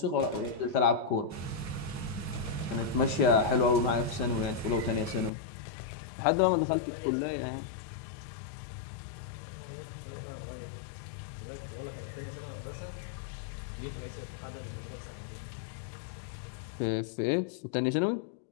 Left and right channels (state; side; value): drops out; right; at 5.3 s